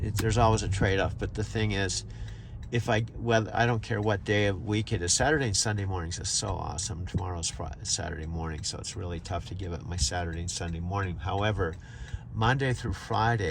always a trade-off, but the thing is, I don't care what day of week it is. Saturday and Sunday mornings is so awesome. Tomorrow's Saturday morning, so it's really tough to give up my Saturday and Sunday morning. However, Monday through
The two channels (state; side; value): identical; both; correlation 1.00